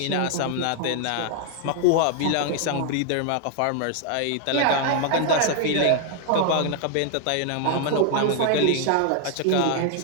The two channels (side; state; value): both; different; correlation 0.00